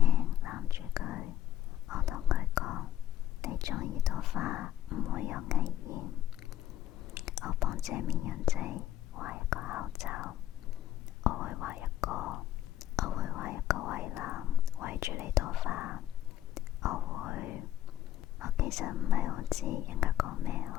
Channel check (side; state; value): right; quieter; 11.7 dB